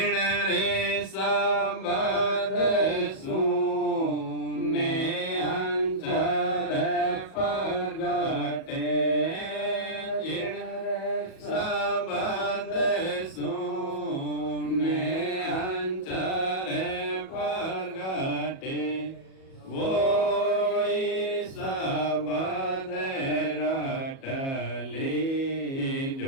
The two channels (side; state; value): right; late; 37 ms